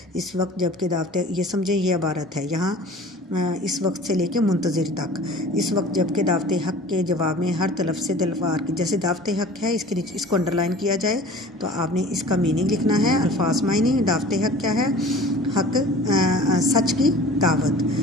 इस वक्त जबकि दावत, ये समझे ये इबारत है यहाँ इस वक्त से लेके मुंतज़िर तक। इस वक्त जबकि दावत हक़ के जवाब में हर तरफ से तलवार की, जैसे दावत हक़ है इसके नीचे इसको अंडरलाइन किया जाए तो आपने इसका मीनिंग लिखना है। अल्फाज मायने, दावत हक़ क्या है? हक़ सच की दावत,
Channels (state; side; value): normal; both; correlation 0.43